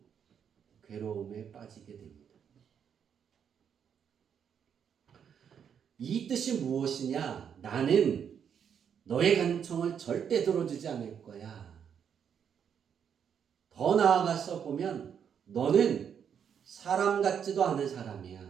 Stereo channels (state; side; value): quieter; left; 7.9 dB